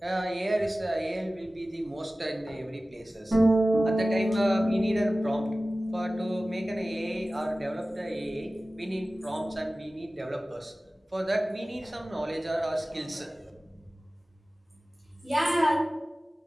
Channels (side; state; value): both; normal; correlation 0.97